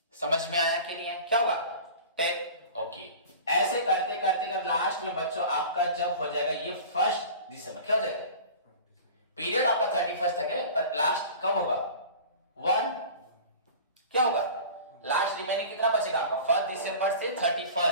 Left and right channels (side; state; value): both; inverted; correlation -0.39